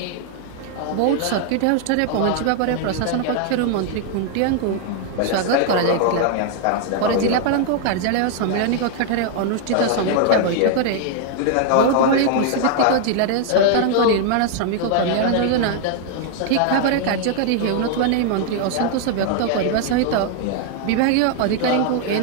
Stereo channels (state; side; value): different; both; correlation 0.00